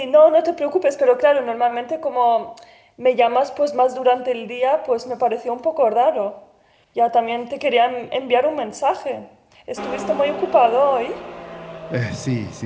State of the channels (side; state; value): both; identical; correlation 1.00